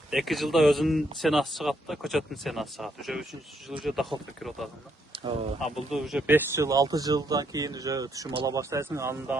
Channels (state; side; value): normal; both; correlation 0.74